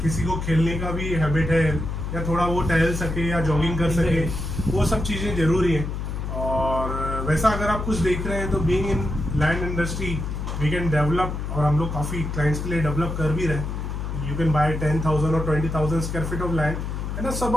किसी को खेलने का भी हैबिट है या थोड़ा वो टहल सके या जॉगिंग कर सके, वो सब चीज़ें ज़रूरी हैं। और वैसा अगर आप कुछ देख रहे हैं तो being in land industry we can develop, और हम लोग काफ़ी क्लाइंट्स के लिए डेवलप कर भी रहे हैं। यू कैन बाय 10,000 और 20,000 square feet of land and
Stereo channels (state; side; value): noise; left; hum, 4 dB below the sound